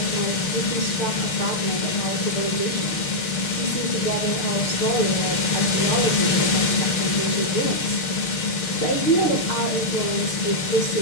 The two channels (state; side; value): late; right; 6.6 ms